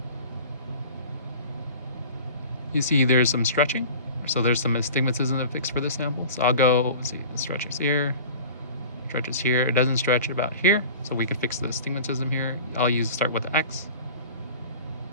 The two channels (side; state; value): both; inverted; correlation -0.39